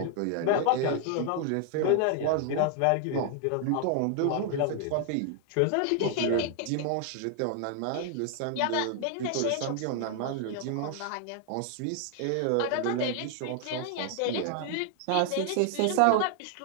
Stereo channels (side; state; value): both; different; correlation 0.00